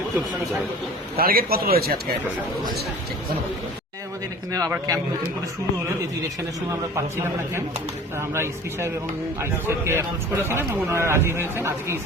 একটু সুবিধা হয়। টার্গেট কত রয়েছে আজকে? আমাদের এখানে আবার ক্যাম্প নতুন করে শুরু হলো, যেহেতু ইলেকশনের সময় আমরা পাচ্ছিলাম না ক্যাম্প, আমরা এসপি সাহেব এবং আইসি সাহেবকে অ্যাপ্রোচ করেছিলাম এবং ওনারা রাজি হয়েছেন। আজকে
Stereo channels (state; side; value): normal; both; correlation 0.43